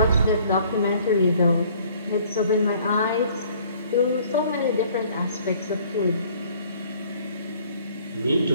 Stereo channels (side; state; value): both; inverted; correlation -0.57